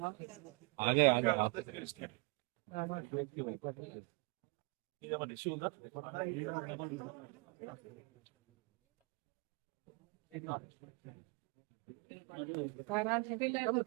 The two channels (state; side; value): quieter; left; 29.4 dB